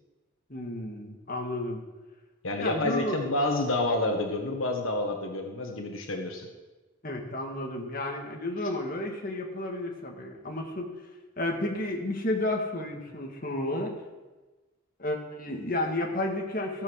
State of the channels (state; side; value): normal; both; correlation 0.10